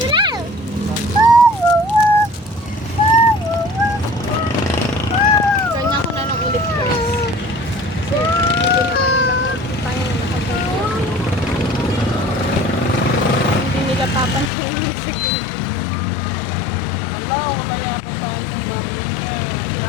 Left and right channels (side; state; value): right; drops out; at 14.5 s